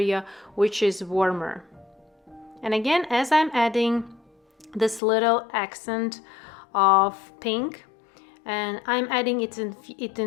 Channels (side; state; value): right; drops out; at 5.0 s